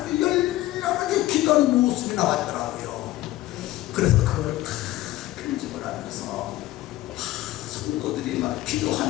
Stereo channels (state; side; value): quieter; right; 16.1 dB